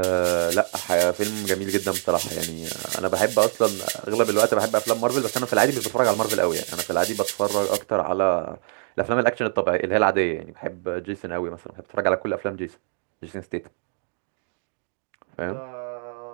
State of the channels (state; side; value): silent; left; digital silence